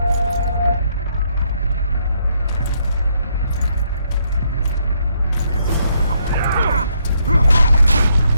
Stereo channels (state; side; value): inverted; both; correlation -0.73